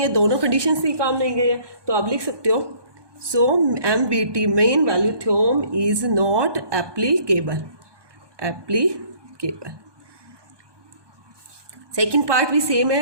है, दोनों कंडीशन से ही काम नहीं गए हैं। तो आप लिख सकते हो सो MVT main value theorem is not applicable. Second part भी सेम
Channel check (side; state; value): left; late; 1.2 ms